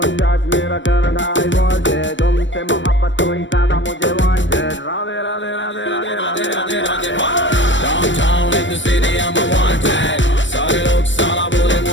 judge me रखना I want it. तुमसे मोहब्बत तो ही ज्यादा मुझे wanted. Radhe Radhe Radhe Radhe Radhe Radhe Radhe. Downtown in the city I'm a wanted, सारे लोग साला बोले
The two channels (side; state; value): right; late; 0.54 ms